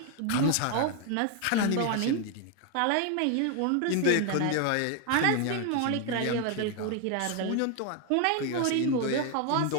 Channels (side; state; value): both; different; correlation 0.01